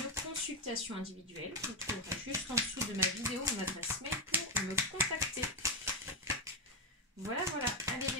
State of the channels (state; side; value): normal; both; correlation 0.06